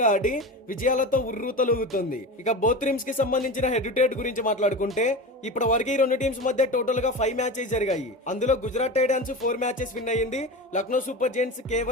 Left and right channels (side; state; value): both; normal; correlation 0.27